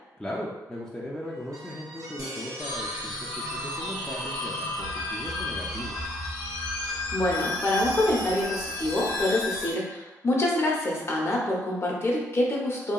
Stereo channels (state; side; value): normal; both; correlation 0.67